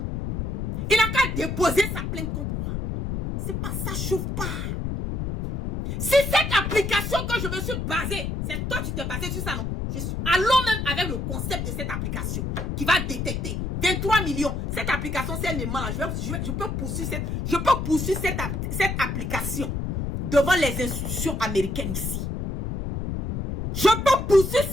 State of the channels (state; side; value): noise; left; rumble, 2 dB below the sound